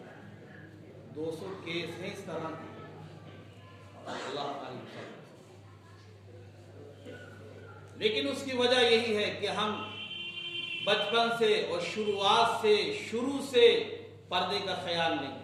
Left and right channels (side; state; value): both; identical; correlation 1.00